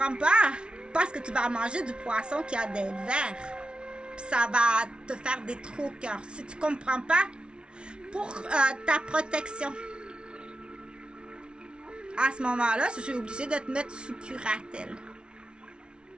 pas, parce que tu vas manger du poisson qui a des vers. Puis ça va te faire des trous au cœur. Si tu ne comprends pas, pour ta protection, à ce moment-là, je suis obligée de te mettre sous curatelle.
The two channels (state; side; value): late; left; 0.057 ms